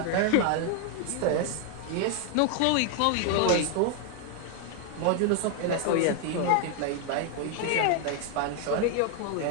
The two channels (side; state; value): both; different; correlation 0.00